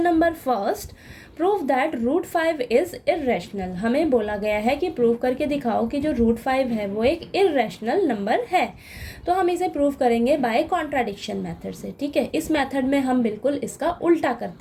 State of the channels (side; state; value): both; identical; correlation 1.00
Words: number first. Prove that root 5 is irrational. हमें बोला गया है कि प्रूव करके दिखाओ कि जो रूट 5 है वो एक इर्रेशनल नंबर है। तो हम इसे प्रूव करेंगे बाय कॉन्ट्राडिक्शन मेथड से। ठीक है, इस मेथड में हम बिल्कुल इसका उल्टा